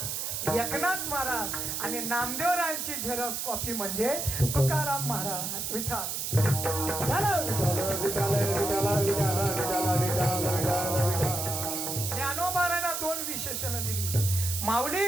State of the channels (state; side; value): noise; right; hiss, 3 dB below the sound